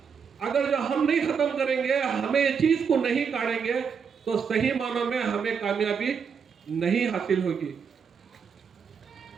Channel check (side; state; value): left; quieter; 6.4 dB